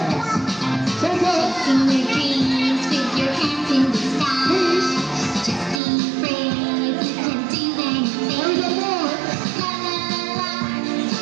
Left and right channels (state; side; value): drops out; left; at 5.8 s